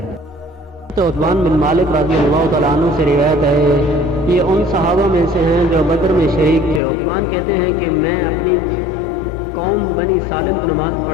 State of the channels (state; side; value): drops out; right; at 6.8 s